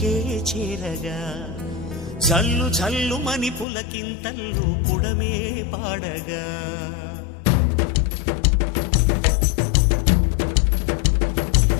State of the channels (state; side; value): drops out; right; at 3.7 s